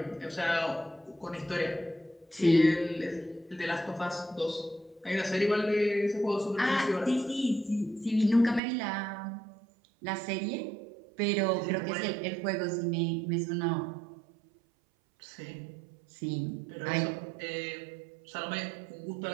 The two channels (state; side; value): drops out; left; at 8.6 s